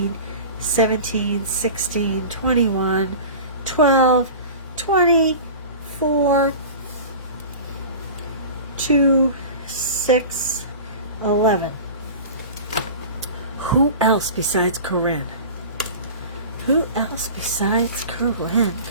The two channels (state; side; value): inverted; both; correlation -0.35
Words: 17 16 21 12 24 2 6 11. Who else besides Corinne? Who else besides Corinne?